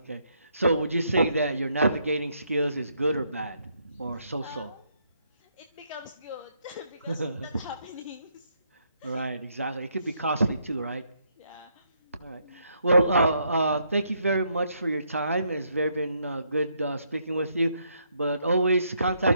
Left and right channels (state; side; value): inverted; both; correlation -0.74